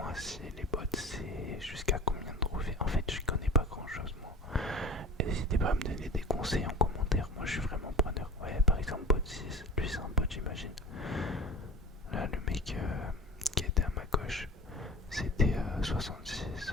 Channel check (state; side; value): normal; both; correlation 0.36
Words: si les bots c'est jusqu'à combien de trophées. En fait, je connais pas grand chose moi. Et n'hésitez pas à me donner des conseils en commentaire, moi je suis vraiment preneur. Ouais, par exemple, bot 6, lui c'est un bot, j'imagine. Là, le mec qui était à ma gauche, c'était 66,